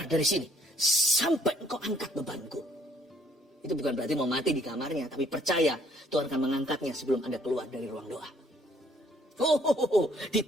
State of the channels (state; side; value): normal; both; correlation 0.64